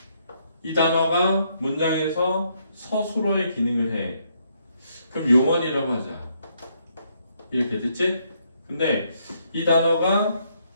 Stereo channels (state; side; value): inverted; both; correlation -0.73